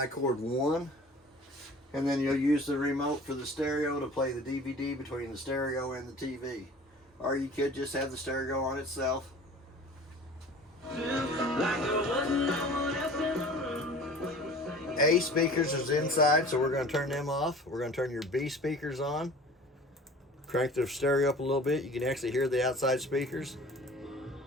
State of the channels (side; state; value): both; normal; correlation 0.43